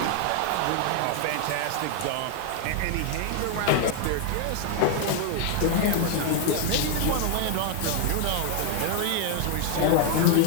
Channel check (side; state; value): both; different; correlation 0.00